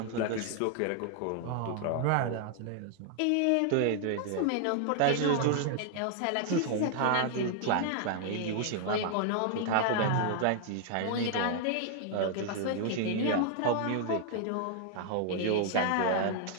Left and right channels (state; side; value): different; both; correlation 0.00